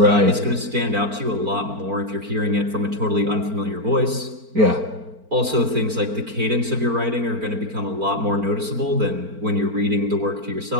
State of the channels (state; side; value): late; left; 4.4 ms